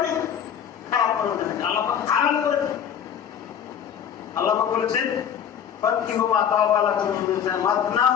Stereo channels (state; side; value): quieter; right; 8.7 dB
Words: খারাপ মনে হচ্ছেন, আল্লাহ পাক হারাম করেছেন। আল্লাহ পাক বলেছেন